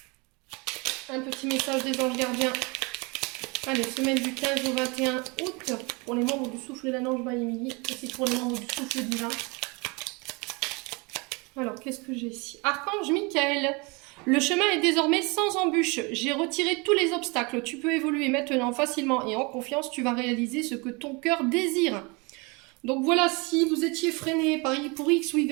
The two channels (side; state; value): left; quieter; 28.6 dB